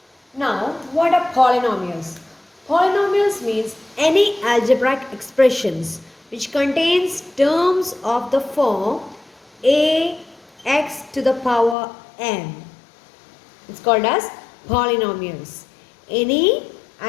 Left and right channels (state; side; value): drops out; right; at 11.8 s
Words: Now, what are polynomials? Polynomials means any algebraic expressions which contains terms of the form a x to the power n. It's called as polynomials. Any